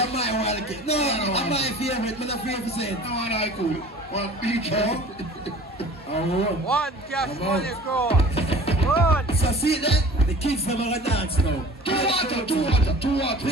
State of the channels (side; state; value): both; normal; correlation 0.44